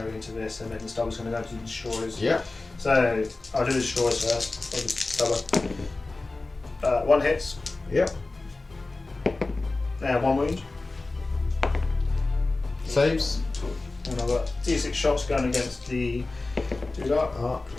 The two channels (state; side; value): quieter; right; 3.3 dB